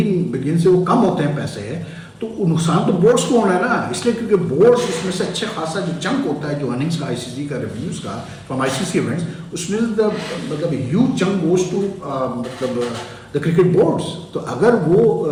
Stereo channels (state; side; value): identical; both; correlation 1.00